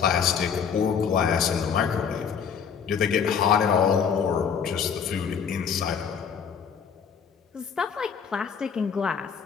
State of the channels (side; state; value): right; quieter; 7.0 dB